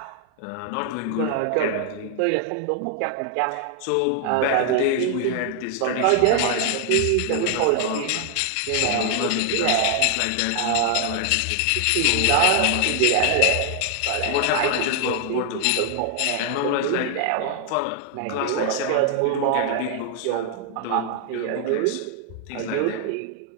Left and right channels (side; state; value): both; different; correlation 0.00